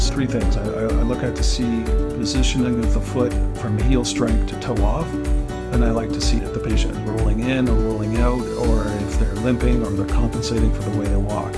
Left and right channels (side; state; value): both; identical; correlation 1.00